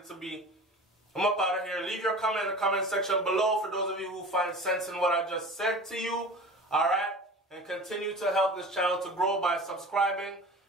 to be. I'm up out of here. Leave your comment in the comment section below for those of you who find sense in what I just said to you. Alright? And continue to help this channel to grow by subscribing.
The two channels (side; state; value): both; normal; correlation 0.37